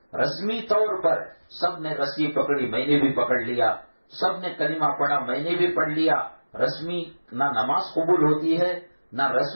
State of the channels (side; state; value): both; inverted; correlation -1.00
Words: رسمی طور پر سب نے رسی پکڑی، میں نے بھی پکڑ لیا، سب نے کلمہ پڑھا، میں نے بھی پڑھ لیا. رسمی نہ نماز قبول ہوتی ہے، نہ